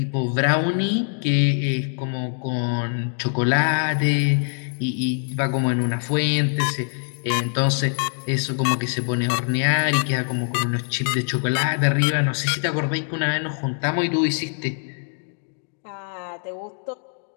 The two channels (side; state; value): right; silent; 58 dB below the other